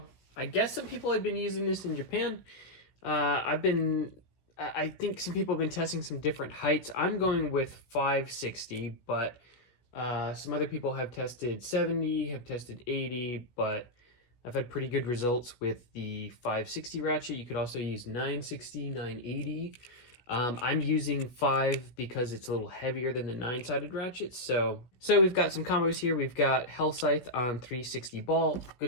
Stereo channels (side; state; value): right; late; 16 ms